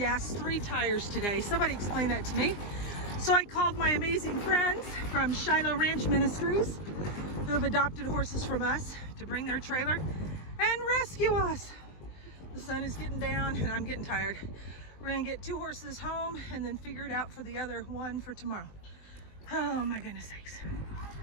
3 tires today. Somebody explain that to me. So I called my amazing friends from Shiloh Ranch Ministries who have adopted horses from us to bring their trailer and rescue us. The sun is getting down and I'm getting tired. We're gonna get 2 horses home and then figure it out for the other one for tomorrow. Oh my goodness sakes.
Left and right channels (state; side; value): late; right; 20 ms